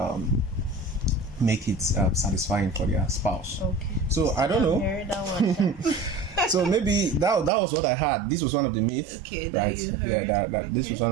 make it satisfying for their spouse. Okay. So I don't know. Heard that one. So maybe that was what I had. This was one of the myths. Okay, right? You heard. Yeah, that this was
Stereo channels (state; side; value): drops out; left; at 7.5 s